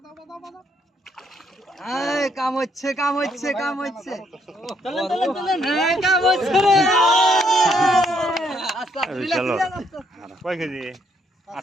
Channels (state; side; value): normal; both; correlation 0.70